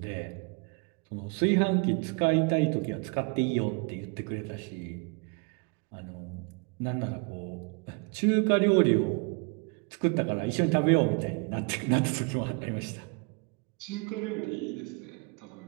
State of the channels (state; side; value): quieter; left; 32.4 dB